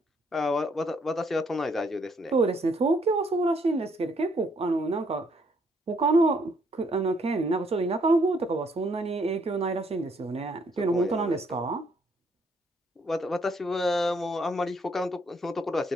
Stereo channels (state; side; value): normal; both; correlation 0.69